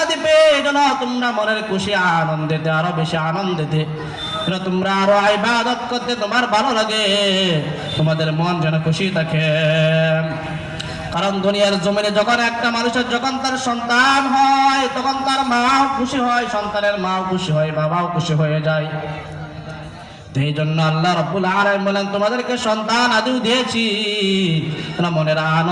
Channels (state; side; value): identical; both; correlation 1.00